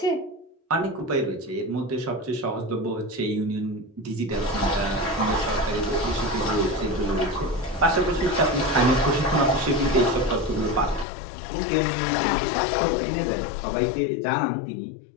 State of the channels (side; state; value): right; drops out; at 11.1 s